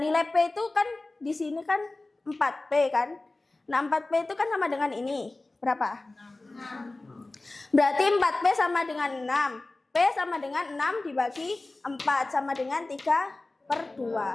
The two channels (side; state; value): right; quieter; 3.0 dB